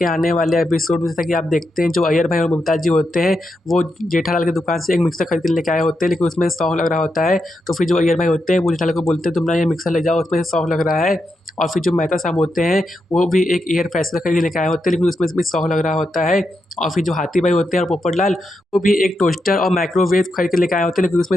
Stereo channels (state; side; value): normal; both; correlation 0.85